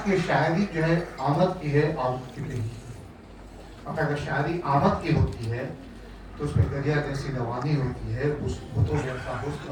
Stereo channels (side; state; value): both; identical; correlation 1.00